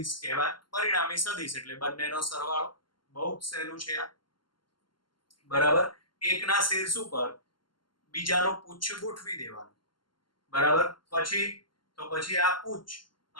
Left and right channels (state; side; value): late; right; 0.72 ms